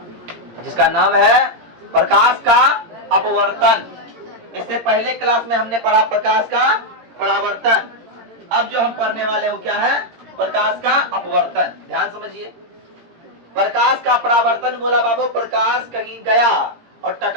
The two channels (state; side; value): late; left; 17 ms